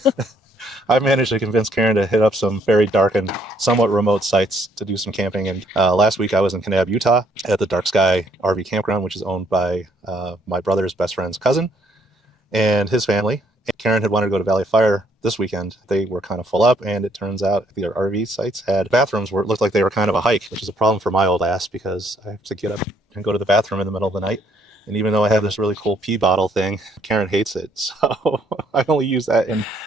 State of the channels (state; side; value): normal; both; correlation 0.68